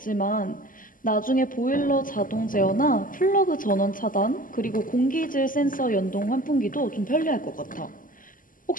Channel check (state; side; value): late; right; 0.40 ms